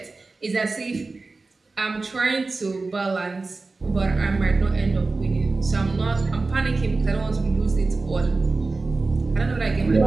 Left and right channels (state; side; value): quieter; left; 3.6 dB